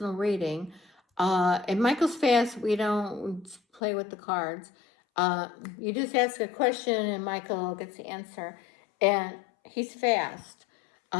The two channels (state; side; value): drops out; right; at 3.8 s